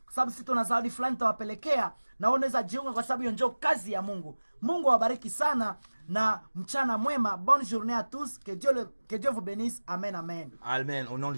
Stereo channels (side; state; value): both; inverted; correlation -1.00